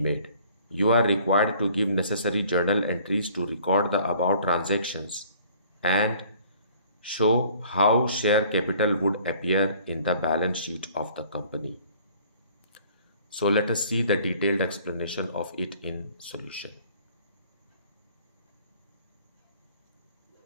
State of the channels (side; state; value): both; inverted; correlation -0.55